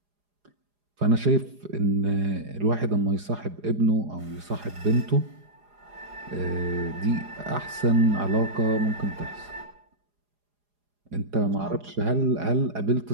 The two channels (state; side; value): late; left; 4.9 ms